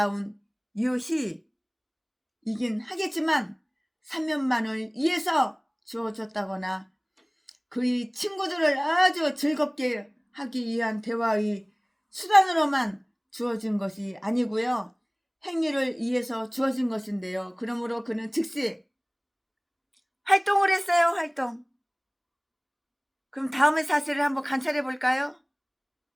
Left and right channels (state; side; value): identical; both; correlation 1.00